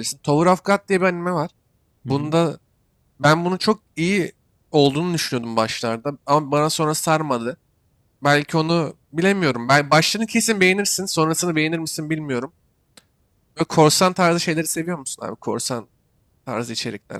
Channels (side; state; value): both; identical; correlation 1.00